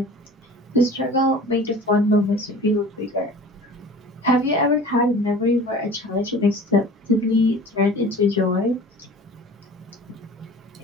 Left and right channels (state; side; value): normal; both; correlation 0.42